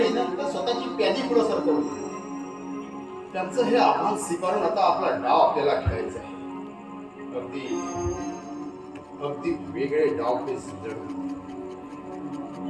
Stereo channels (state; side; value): identical; both; correlation 1.00